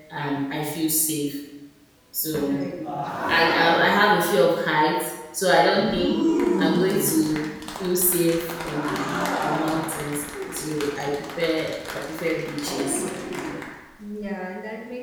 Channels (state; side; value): identical; both; correlation 1.00